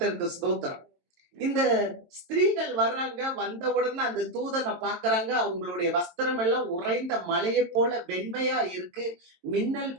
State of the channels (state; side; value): late; left; 22 ms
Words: ஸ்தோத்திரம். இந்த ஸ்திரீகள் வர்றாங்க, வந்த உடனே அந்த தூதனை பாக்குறாங்க. அவங்களுடைய வஸ்திரம் எல்லாம் உறைந்த மலையை போல வெண்மையா இருக்கு, மின்னல்